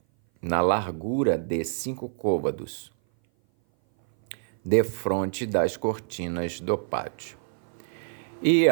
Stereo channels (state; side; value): silent; left; 57 dB below the other